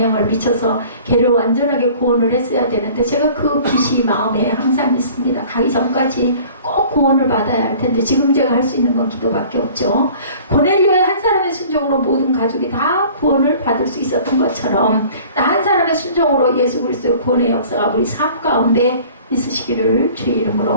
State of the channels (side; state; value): both; inverted; correlation -0.48